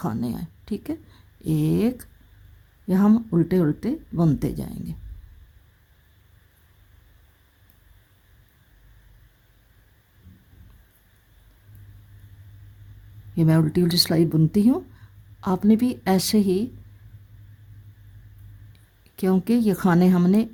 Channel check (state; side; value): identical; both; correlation 1.00